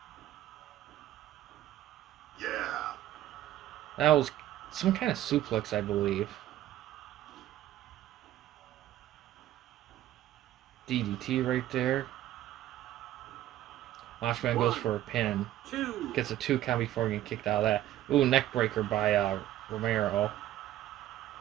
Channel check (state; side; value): quieter; left; 13.3 dB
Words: Yeah. That was some kind of suplex, I believe. DDT right there. Macho Man goes for a pin. 2. Gets a 2 count before getting kicked out of that. Ooh, neck breaker by Romero.